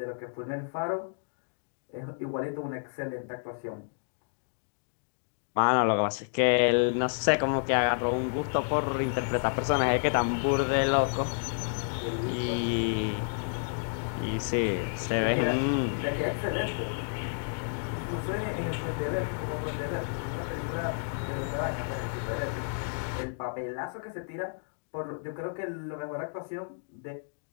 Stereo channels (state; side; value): silent; right; digital silence